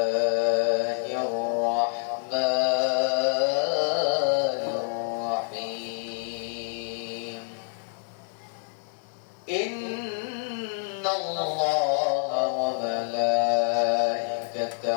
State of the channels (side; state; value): right; silent; 58 dB below the other